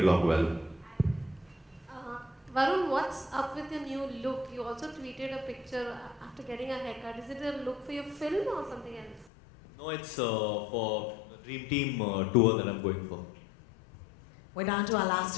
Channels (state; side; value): drops out; right; at 9.3 s